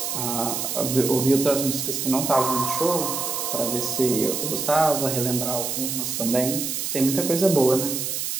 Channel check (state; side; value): noise; right; hiss, 2 dB below the sound